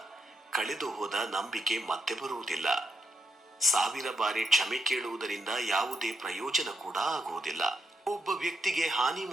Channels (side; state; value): both; normal; correlation 0.82